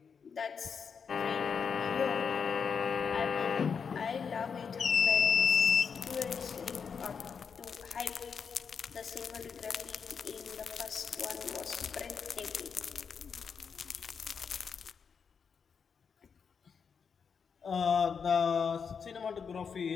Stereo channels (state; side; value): quieter; right; 6.2 dB